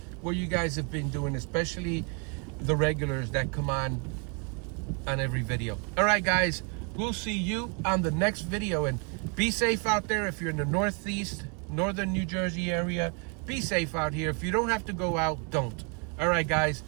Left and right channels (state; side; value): quieter; left; 35.5 dB